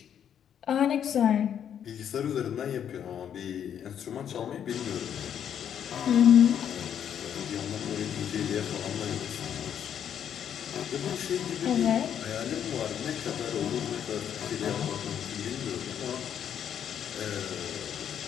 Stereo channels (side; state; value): right; quieter; 9.0 dB